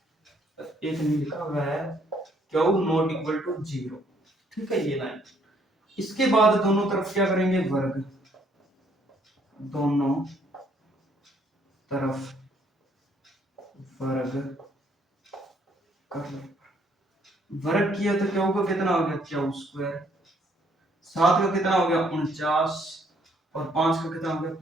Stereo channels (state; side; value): normal; both; correlation 0.67